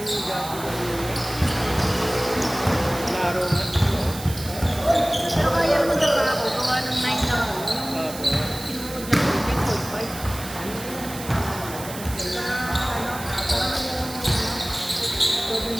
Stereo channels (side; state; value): right; noise; hiss, 12 dB below the sound